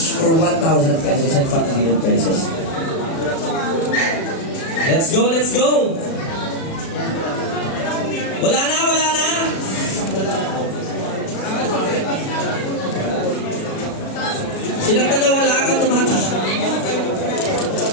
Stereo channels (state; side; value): late; right; 36 ms